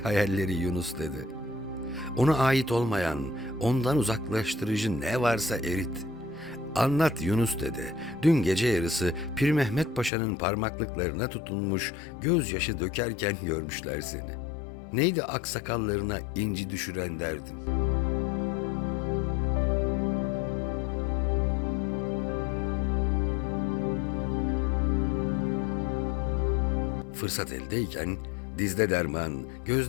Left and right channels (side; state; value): right; drops out; at 10.1 s